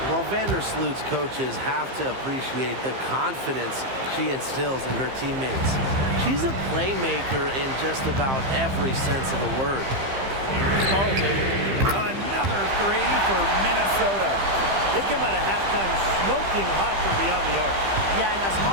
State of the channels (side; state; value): left; late; 15 ms